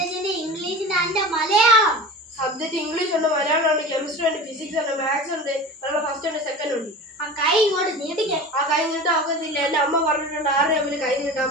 ഇംഗ്ലീഷിന്റെ അതിന്റെ മലയാളം. സബ്ജക്റ്റ് ഇംഗ്ലീഷ് ഉണ്ട്, മലയാളം ഉണ്ട്, കെമിസ്ട്രി ഉണ്ട്, ഫിസിക്സ് ഉണ്ട്, മാത്സ് ഉണ്ട്, ഫസ്റ്റ് ഉണ്ട്, സെക്കൻഡ് ഉണ്ട്. ആ കൈ ഇങ്ങോട്ട് നീട്ടിക്കാൻ. ആ കൈ നീട്ടാൻ ഒക്കത്തില്ല. എന്റെ അമ്മ പറഞ്ഞിട്ടുണ്ട് ആരുടെ അമ്മന് കൈ നീട്ടാൻ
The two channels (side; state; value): both; normal; correlation 0.33